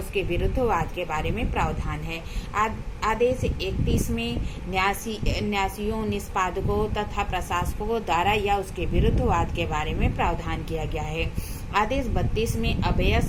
विरुद्ध वाद के बारे में प्रावधान है। आदेश 31 में न्यासियों, निष्पादकों तथा प्रशासकों द्वारा या उसके विरुद्ध वाद के बारे में प्रावधान किया गया है। आदेश 32 में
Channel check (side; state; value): both; identical; correlation 1.00